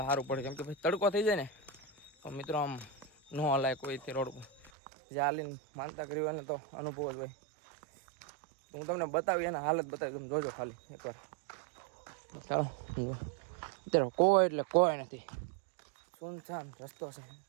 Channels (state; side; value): drops out; left; at 4.7 s